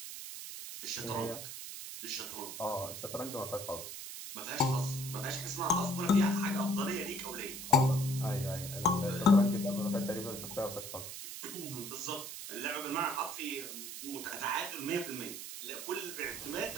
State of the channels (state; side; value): noise; right; hiss, 8 dB below the sound